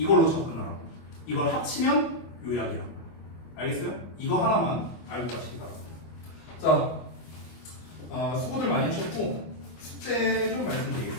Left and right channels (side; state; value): right; late; 25 ms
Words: 접근하라고. 이걸 합치면 요약이라고. 알겠어요? 이거 하나만 알고 가시기 바랍니다. 자, 수고들 많이 하셨고 숙제 좀